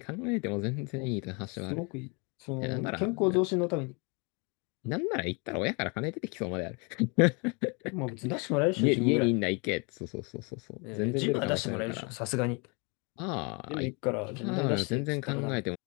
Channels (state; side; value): quieter; right; 32.2 dB